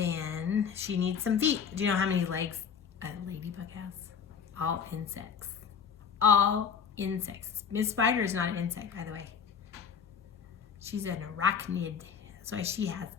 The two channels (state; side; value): quieter; right; 6.9 dB